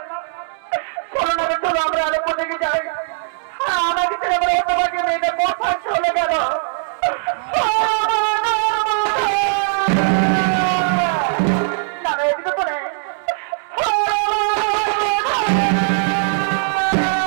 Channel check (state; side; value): silent; left; digital silence